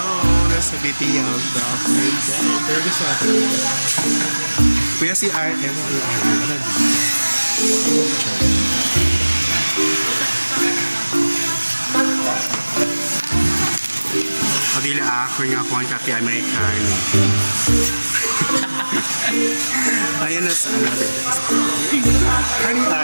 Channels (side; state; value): both; inverted; correlation -1.00